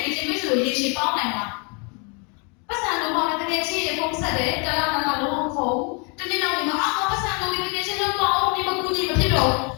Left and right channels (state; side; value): quieter; right; 34.1 dB